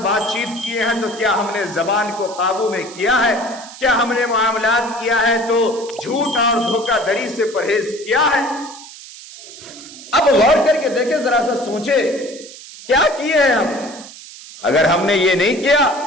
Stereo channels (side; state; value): right; noise; hiss, 16 dB below the sound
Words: بات چیت کیے ہیں تو کیا ہم نے زبان کو قابو میں کیا ہے؟ کیا ہم نے معاملات کیا ہے تو جھوٹ اور دھوکہ دری سے پرہیز کیا ہے؟ اب غور کر کے دیکھیں، ذرا سا سوچے کیا کیے ہیں ہم؟ اگر ہم نے یہ نہیں کیا،